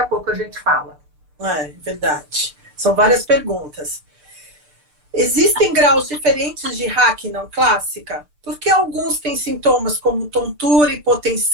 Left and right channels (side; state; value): left; late; 6.7 ms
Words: a pouco a gente fala. É verdade, são várias perguntas. Existem graus diferentes de RAC não clássica? Por que alguns têm sintomas como tontura,